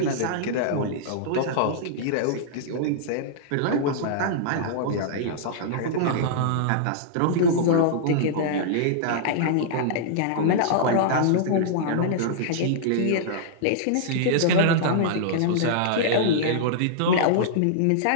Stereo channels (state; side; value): different; both; correlation -0.02